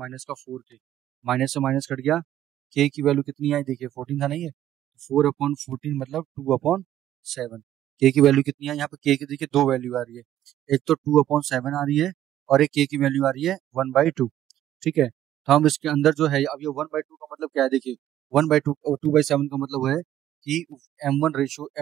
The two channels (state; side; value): quieter; left; 12.2 dB